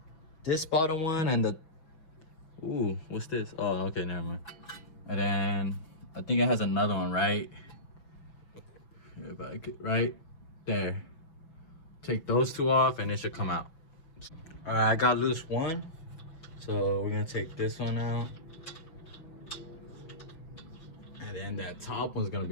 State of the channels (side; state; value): right; late; 6.0 ms